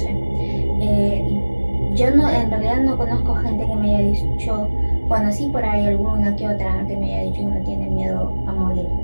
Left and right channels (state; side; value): inverted; both; correlation -1.00